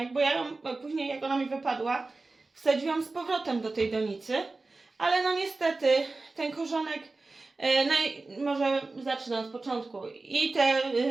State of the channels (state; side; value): quieter; left; 3.5 dB